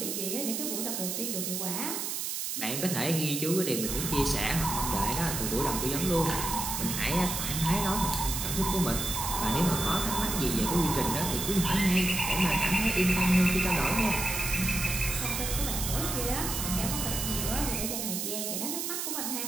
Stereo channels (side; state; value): right; noise; hiss, 2 dB below the sound